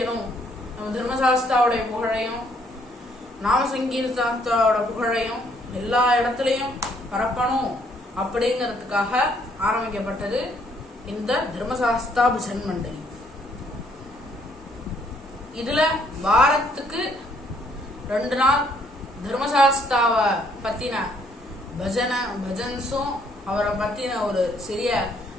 நம்ம தர்மசாஸ்தாவுடைய புகழையும் நாம சங்கீர்த்தனத்தோட புகழையும் எல்லா இடத்துலையும் பரப்பணும் அப்படிங்கிறதுக்காக ஆரம்பிக்கப்பட்டது இந்த தர்மசாஸ்தா பஜன் மண்டலி. இதுல வாரத்துக்கு 2 நாள் தர்மசாஸ்தாவை பத்தின பஜன்ஸும் அவரை பத்தின ஒரு சிறிய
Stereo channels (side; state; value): both; normal; correlation 0.67